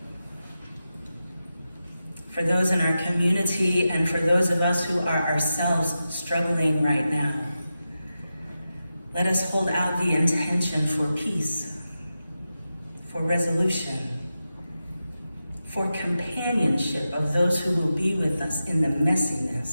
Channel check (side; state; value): both; inverted; correlation -0.91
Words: For those in our community and for those of us who are ourselves struggling right now, let us hold out the intention for peace, for resolution, for companionship of those who will be with us in the